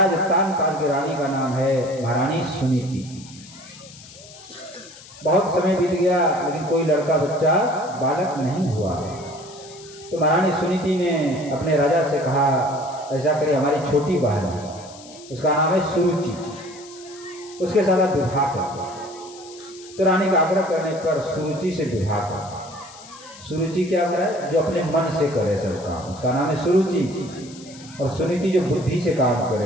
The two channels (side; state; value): left; noise; hiss, 19 dB below the sound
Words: उत्तानपाद की रानी का नाम है महारानी सुनीति। बहुत समय बीत गया लेकिन कोई लड़का बच्चा बालक नहीं हुआ। तो महारानी सुनीति ने अपने राजा से कहा ऐसा करिए हमारी छोटी बहन है, उसका नाम है सुरुचि, उसके साथ आप विवाह कर। तो रानी का आग्रह करने पर सुरुचि से विवाह कर। सुरुचि क्या करे? जो अपने मन से करे सब काम, उसका नाम है सुरुचि। और सुनीति जो बुद्धि से काम